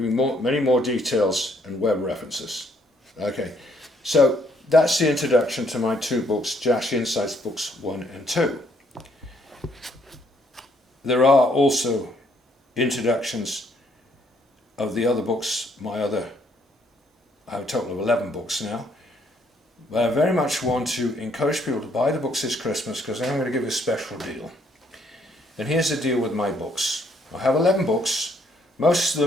many more details and web references. Okay, so that's the introduction to my two books, Jasher Insights Books 1 and 2. There are also introductions of the other books, I have a total of 11 books now. But I very much want to encourage people to buy the books this Christmas, because I'm going to give you a special deal. And here's the deal with my books. I have 11 books. Most of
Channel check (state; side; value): normal; both; correlation 0.68